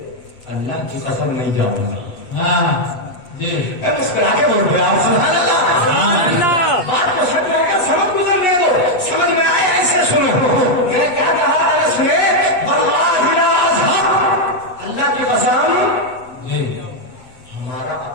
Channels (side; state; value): right; late; 8.1 ms